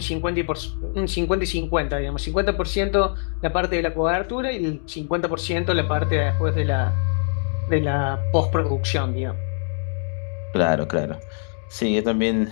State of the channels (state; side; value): silent; right; 61 dB below the other